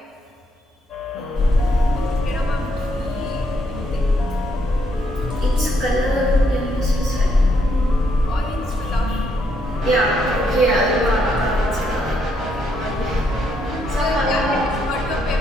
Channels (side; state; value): both; normal; correlation 0.75